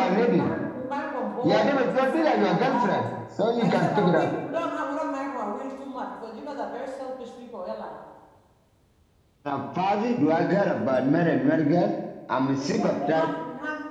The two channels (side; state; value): both; identical; correlation 1.00